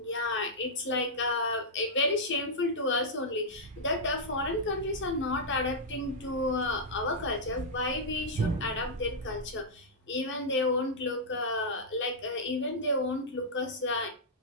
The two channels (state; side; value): normal; both; correlation -0.08